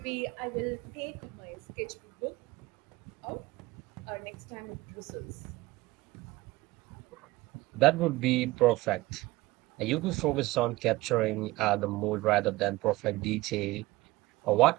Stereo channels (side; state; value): left; quieter; 19.9 dB